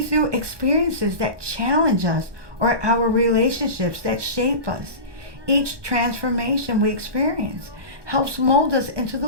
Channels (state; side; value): late; left; 1.2 ms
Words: experiences that challenge us or our relationships that shape us. Each transformation we experience helps mold us into